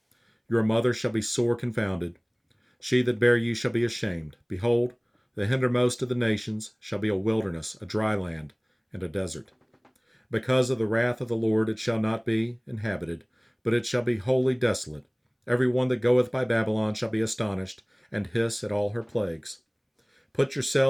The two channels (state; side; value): identical; both; correlation 1.00